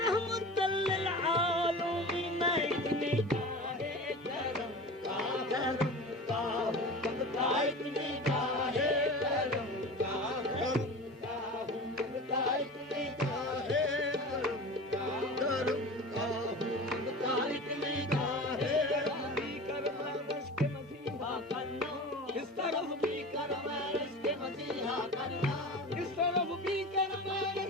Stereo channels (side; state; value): both; normal; correlation 0.33